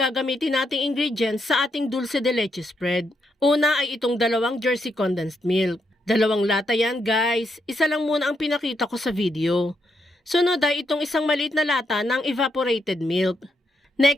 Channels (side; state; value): both; normal; correlation 0.79